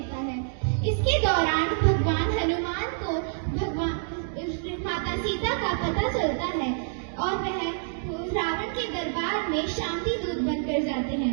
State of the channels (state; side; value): silent; left; digital silence